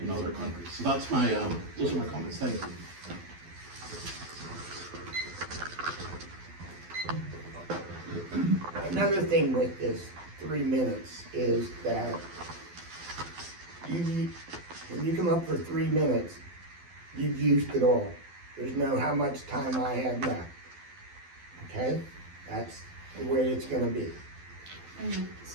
other countries. So that's my those are my comments. Thank you. Another thing with this 3 minutes is that when you come up for 3 minutes, you've used it all. There's no how much time I have left. Okay? That's the way it's gonna be.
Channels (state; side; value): late; left; 12 ms